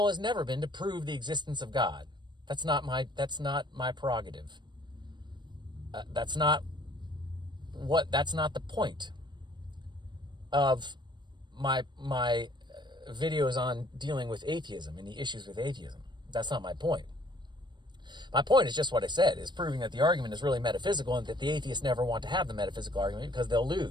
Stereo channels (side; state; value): left; late; 0.22 ms